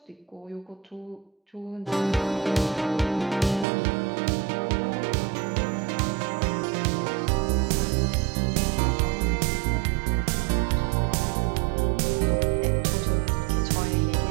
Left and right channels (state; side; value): drops out; left; at 3.7 s